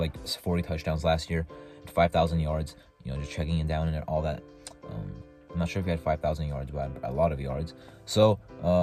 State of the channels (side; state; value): both; identical; correlation 1.00